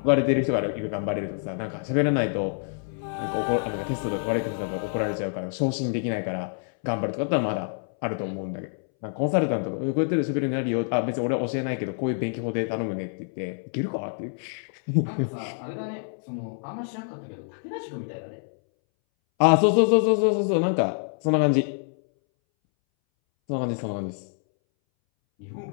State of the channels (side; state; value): right; silent; 61 dB below the other